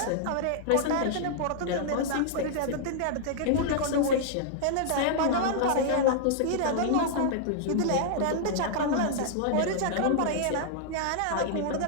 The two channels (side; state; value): both; different; correlation -0.01